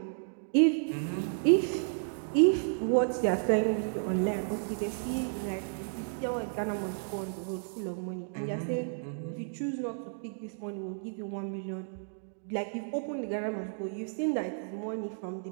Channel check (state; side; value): silent; left; digital silence